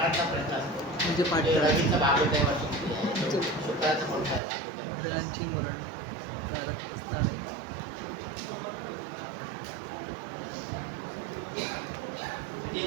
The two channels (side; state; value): left; drops out; at 4.4 s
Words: प्रश्न असतो. म्हणजे रवीचं भागवत आहे वर्ष किती आहे, शुक्राचं कोणतं आहे ग्रहांची मरण स्थान आहे. म्हणजे